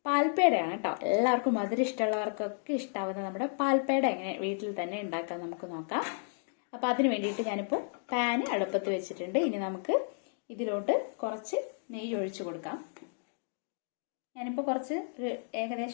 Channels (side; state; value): right; silent; digital silence